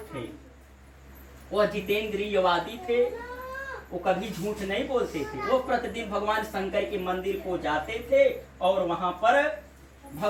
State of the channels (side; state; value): both; identical; correlation 1.00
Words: थे, वह जितेंद्रियवादी थे। वो कभी झूठ नहीं बोलते थे। वो प्रतिदिन भगवान शंकर के मंदिर को जाते थे और वहां पर